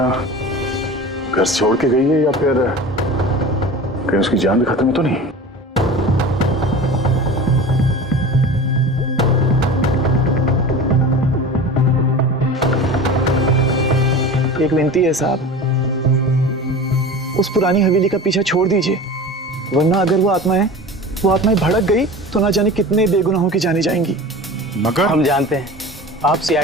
घर छोड़ के गई है या फिर कहीं उसकी जान भी खत्म तो नहीं? एक विनती है साहब, उस पुरानी हवेली का पीछा छोड़ दीजिए, वरना अगर वो आत्माएं भड़क गई तो ना जाने कितने बेगुनाहों की जाने जाएंगी। मगर हम जानते हैं आप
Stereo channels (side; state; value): both; normal; correlation 0.35